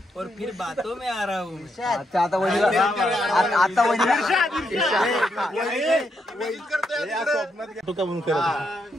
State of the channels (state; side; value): normal; both; correlation 0.79